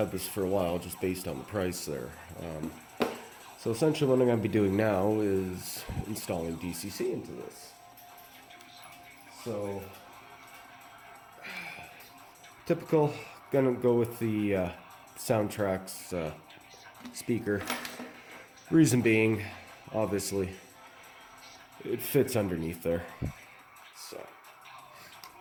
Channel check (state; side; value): identical; both; correlation 1.00